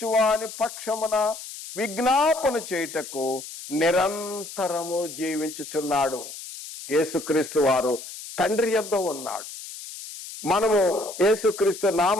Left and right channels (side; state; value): left; noise; hiss, 12 dB below the sound